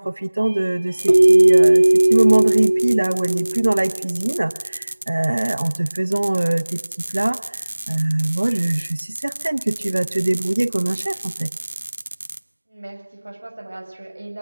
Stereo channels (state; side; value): inverted; both; correlation -1.00